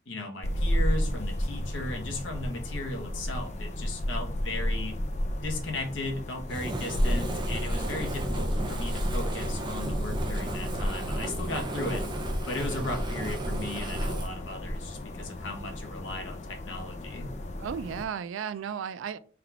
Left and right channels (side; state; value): both; normal; correlation 0.73